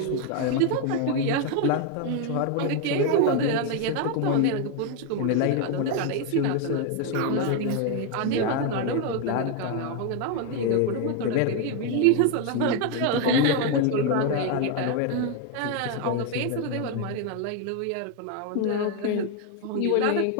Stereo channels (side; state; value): both; different; correlation 0.01